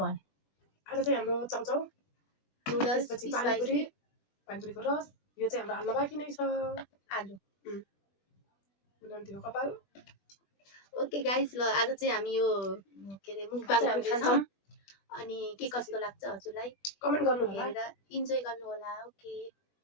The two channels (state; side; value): late; right; 20 ms